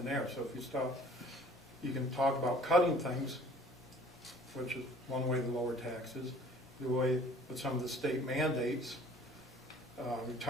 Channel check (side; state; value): both; normal; correlation 0.52